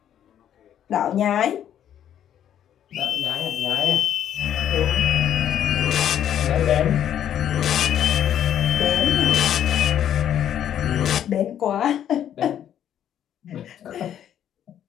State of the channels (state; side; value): quieter; right; 10.2 dB